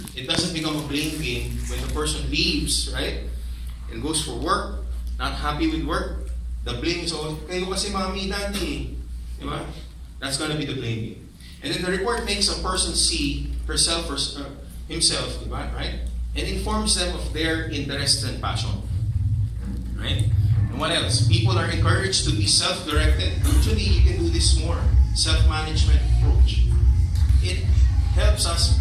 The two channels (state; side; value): identical; both; correlation 1.00